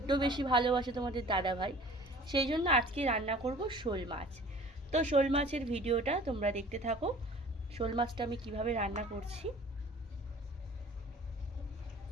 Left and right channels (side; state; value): both; normal; correlation 0.47